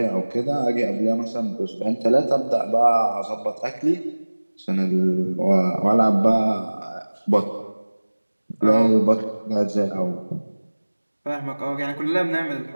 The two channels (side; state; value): both; inverted; correlation -1.00